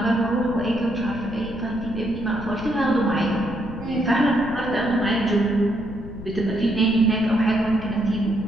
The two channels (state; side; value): noise; left; rumble, 12 dB below the sound